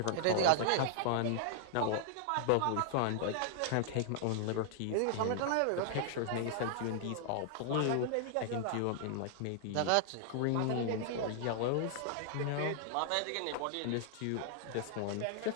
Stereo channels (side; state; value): both; different; correlation -0.01